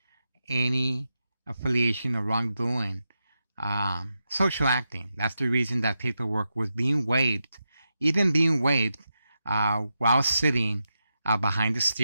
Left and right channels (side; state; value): both; inverted; correlation -0.88